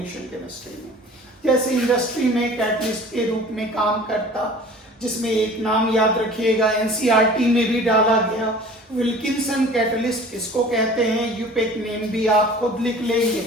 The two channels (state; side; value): normal; both; correlation 0.45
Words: केमिस्ट्री में। जैसे इंडस्ट्री में कैटलिस्ट के रूप में काम करता, जिसमें एक नाम याद रखिएगा, NCERT में भी डाला गया, विल्किंसन कैटलिस्ट किसको कहते हैं, यूपेक नेम भी आप खुद लिख